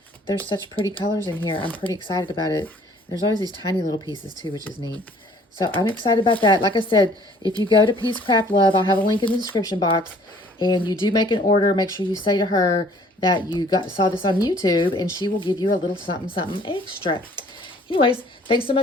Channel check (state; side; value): normal; both; correlation 0.56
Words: There's such pretty colors in here. I'm pretty excited about it. There's always these tiny little pieces too, which is neat. So I'm excited about that. Like I said, if you go to Peacecraft Love, I'll have a link in the description box, and you do make an order, make sure you say to her that you saw this on YouTube, and she will give you a little something, something extra. Anyways, thanks so